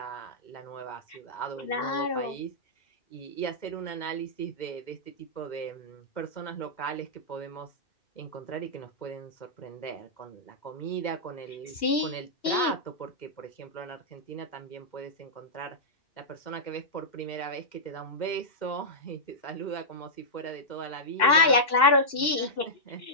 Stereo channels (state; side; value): late; right; 2.6 ms